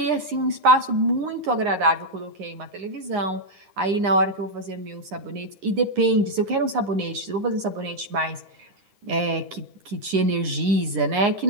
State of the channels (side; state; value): left; late; 9.8 ms